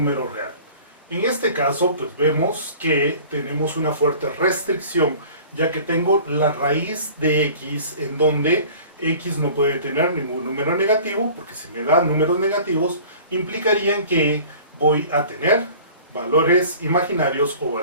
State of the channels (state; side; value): inverted; both; correlation -0.45